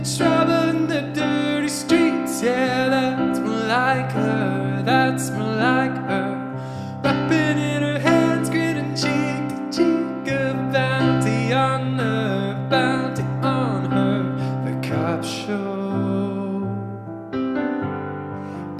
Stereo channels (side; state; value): both; identical; correlation 1.00